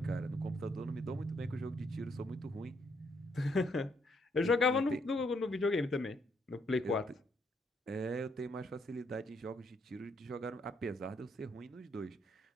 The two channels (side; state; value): both; normal; correlation 0.72